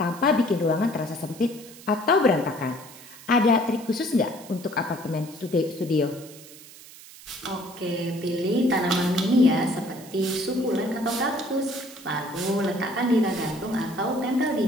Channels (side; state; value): right; noise; hiss, 19 dB below the sound